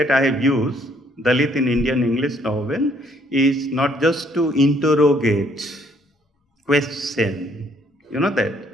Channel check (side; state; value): both; normal; correlation 0.66